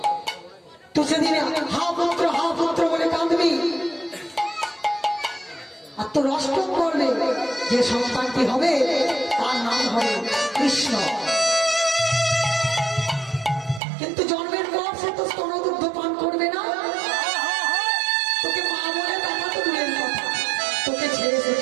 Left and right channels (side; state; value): left; drops out; at 13.8 s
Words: তো সেদিনে হা পুত্র বলে কাঁদবি আর তোর অষ্টম করলে যে সন্তানটি হবে তার নাম হবে কৃষ্ণ কিন্তু জন্মের পর সে তো স্তনদুগ্ধ পান করবে না তোকে মা বলে দেখা তো দূরের কথা তোকে ছেড়ে সে